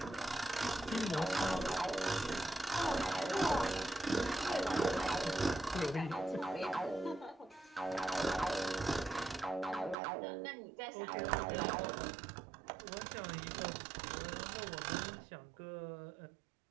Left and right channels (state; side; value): drops out; left; at 10.0 s